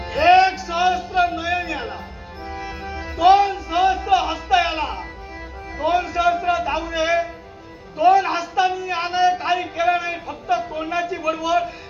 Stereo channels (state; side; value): identical; both; correlation 1.00